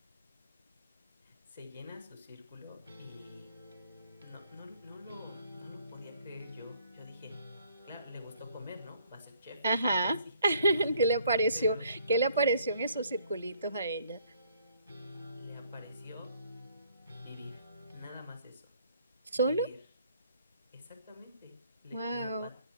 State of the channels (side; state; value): both; inverted; correlation -0.64